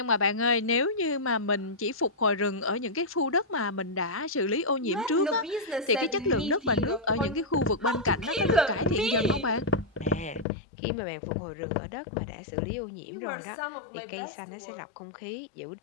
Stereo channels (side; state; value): right; drops out; at 10.5 s